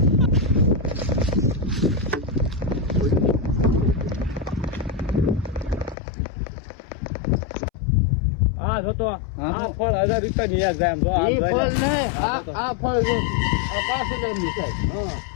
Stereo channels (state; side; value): drops out; right; at 6.0 s